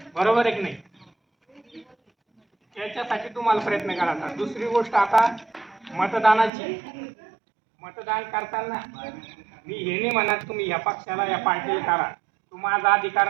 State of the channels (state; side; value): drops out; left; at 6.5 s